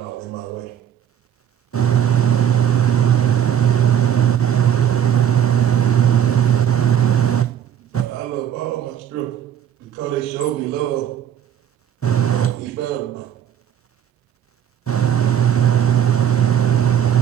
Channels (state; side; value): quieter; left; 9.6 dB